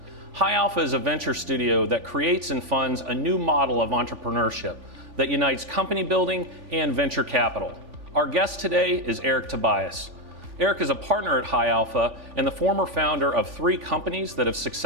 High Alpha is a venture studio that creates and funds a new model of entrepreneurship that unites company building and venture capital. Our guest today is Eric Tobias. Eric is a partner at High Alpha and the former founder of 3 companies that have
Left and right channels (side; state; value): left; late; 3.5 ms